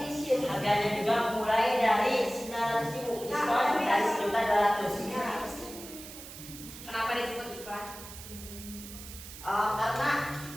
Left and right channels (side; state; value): right; noise; hiss, 14 dB below the sound